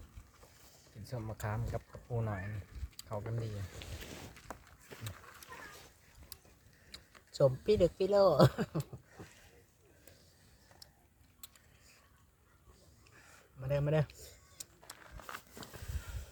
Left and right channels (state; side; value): identical; both; correlation 1.00